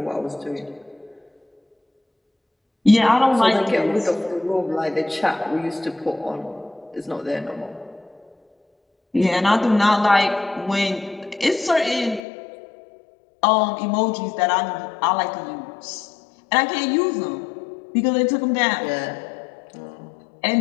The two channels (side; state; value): right; drops out; at 12.2 s